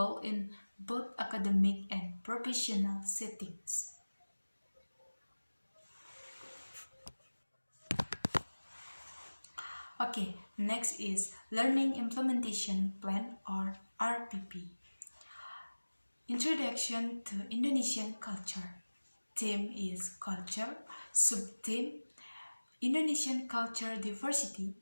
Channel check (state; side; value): inverted; both; correlation -1.00